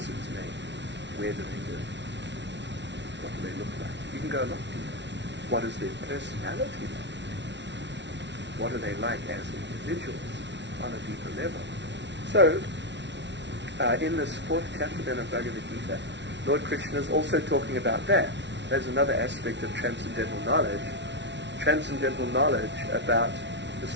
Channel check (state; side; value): late; left; 0.51 ms